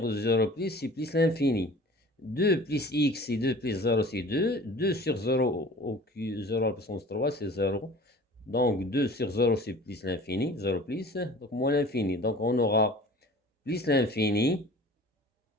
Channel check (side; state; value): both; normal; correlation 0.44